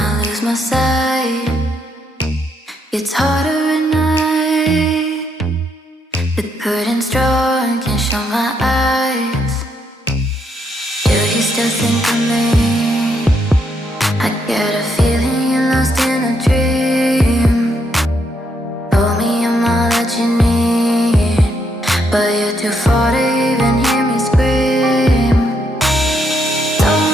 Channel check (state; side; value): normal; both; correlation 0.76